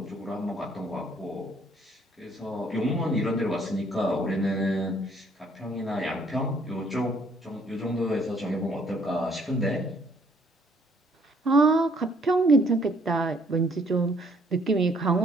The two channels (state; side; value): normal; both; correlation 0.64